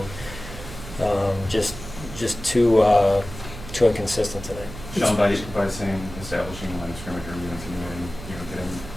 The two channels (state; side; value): noise; right; hum, 12 dB below the sound